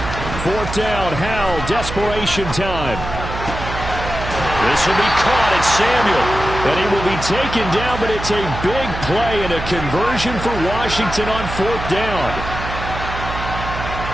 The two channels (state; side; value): noise; right; hum, 7 dB below the sound